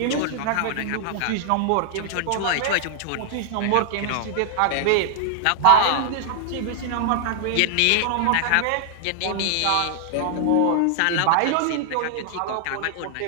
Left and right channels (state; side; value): different; both; correlation 0.00